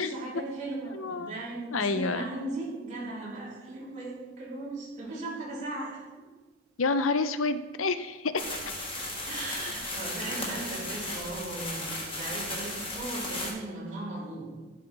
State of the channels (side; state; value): both; normal; correlation 0.06